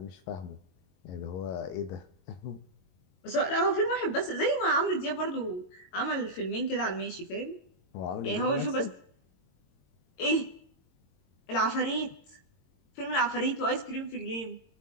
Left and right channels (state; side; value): late; right; 22 ms